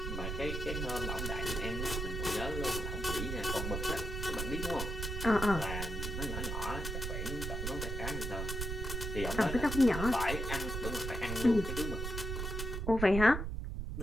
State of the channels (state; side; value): noise; right; rumble, 3 dB below the sound